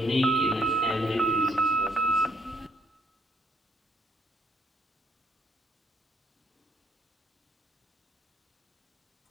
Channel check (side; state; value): both; normal; correlation 0.69